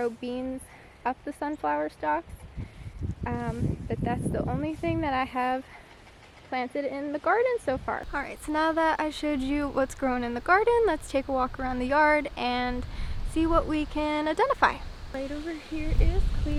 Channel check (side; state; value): both; identical; correlation 1.00